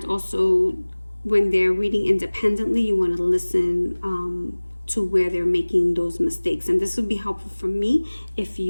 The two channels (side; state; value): both; inverted; correlation -1.00